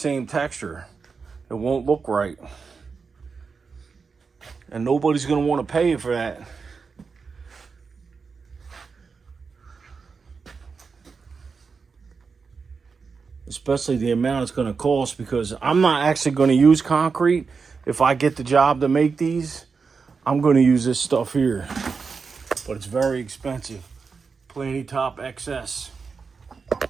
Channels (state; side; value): quieter; left; 5.1 dB